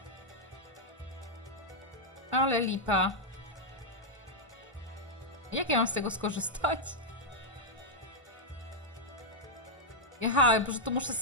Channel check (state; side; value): normal; both; correlation -0.03